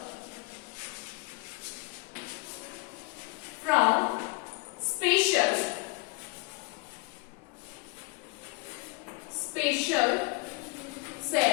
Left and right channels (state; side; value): quieter; right; 28.3 dB